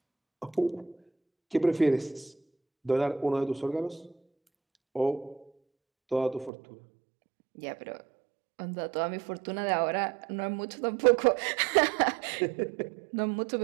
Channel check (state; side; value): drops out; left; at 6.5 s